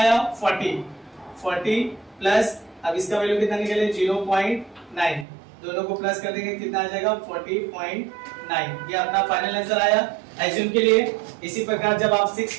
40 प्लस अब इसका वैल्यू कितना निकले? 0.9। दोनों को प्लस कर देंगे कितना आ जाएगा 40.9। ये अपना फाइनल आंसर आया एज्यूम के लिए। इसी प्रकार जब आप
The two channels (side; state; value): left; drops out; at 5.2 s